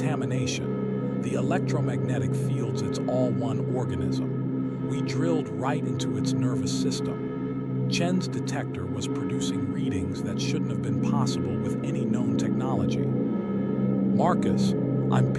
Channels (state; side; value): identical; both; correlation 1.00